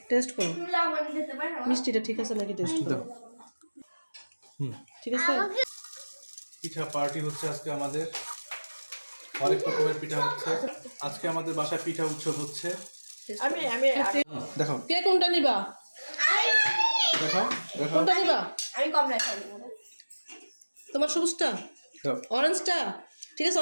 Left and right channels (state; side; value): inverted; both; correlation -1.00